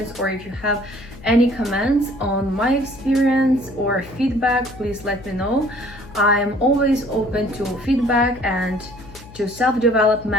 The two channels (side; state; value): left; noise; hum, 19 dB below the sound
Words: or if you have any comments on my experience or feedback, please let me know. I'm always open to feedback and to